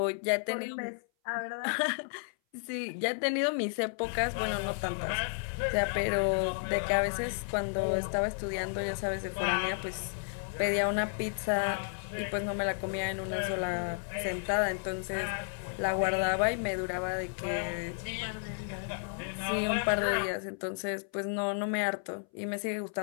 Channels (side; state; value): right; silent; 56 dB below the other